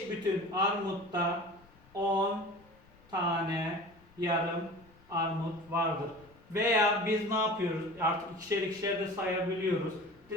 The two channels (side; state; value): left; noise; rumble, 27 dB below the sound